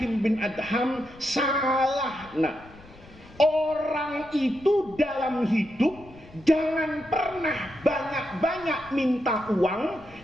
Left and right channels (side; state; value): left; noise; rumble, 23 dB below the sound